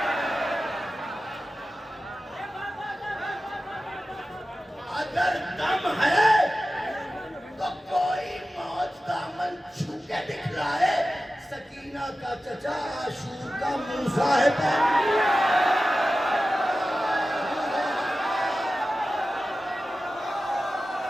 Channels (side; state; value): both; normal; correlation 0.94